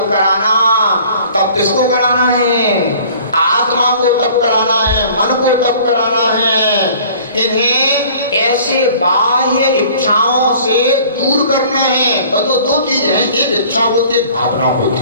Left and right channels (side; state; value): both; inverted; correlation -0.50